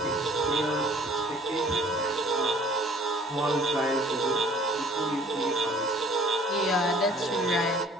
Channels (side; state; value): both; normal; correlation 0.53